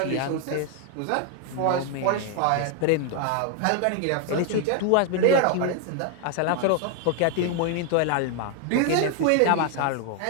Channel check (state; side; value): different; both; correlation 0.00